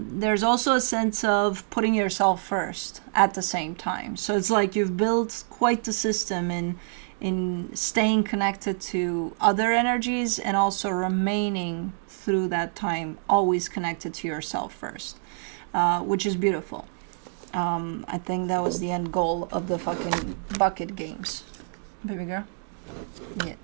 also a sense of putting yourself first at the same time. So it's like you've built quite the system in staying connected to other energies and also remaining through that time always connected to yourself first, which is beautiful. I think that was the end goal of the fucking bucket games. Baby girl? Yeah,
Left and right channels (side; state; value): left; silent; 56 dB below the other